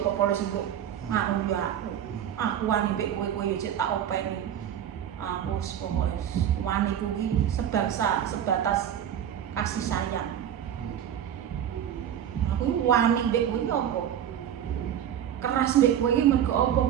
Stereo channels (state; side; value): quieter; left; 9.9 dB